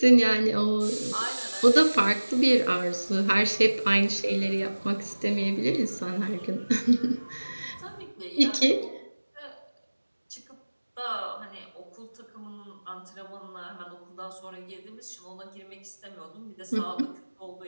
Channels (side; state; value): both; inverted; correlation -1.00